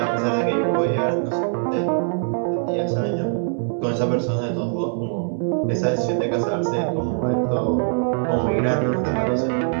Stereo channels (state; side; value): silent; left; digital silence